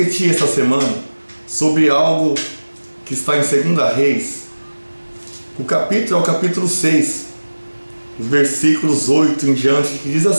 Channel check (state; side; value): inverted; both; correlation -1.00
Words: essa semana sobre algo que está em 2 Reis. O capítulo é o capítulo 6, os versículos 8 em diante, que diz